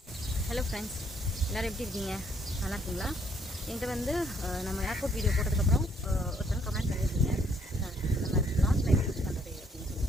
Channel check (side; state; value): both; normal; correlation 0.68